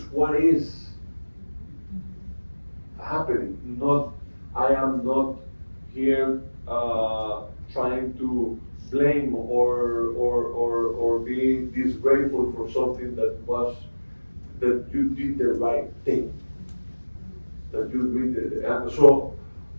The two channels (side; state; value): both; inverted; correlation -1.00